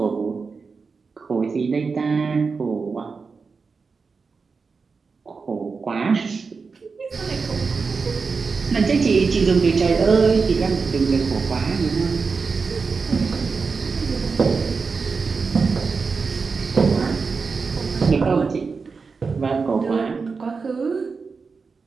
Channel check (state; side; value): quieter; left; 4.8 dB